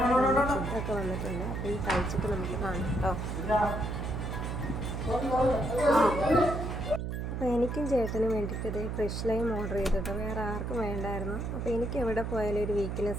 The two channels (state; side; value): noise; right; hum, 3 dB below the sound